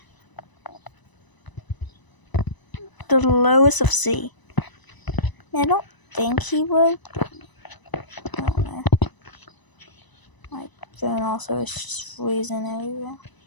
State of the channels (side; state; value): right; late; 1.0 ms